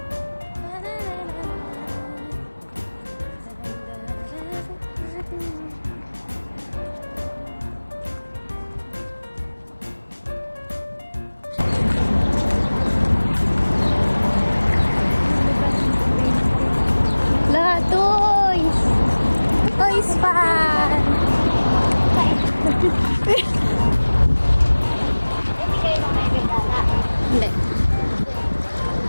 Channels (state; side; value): inverted; both; correlation -1.00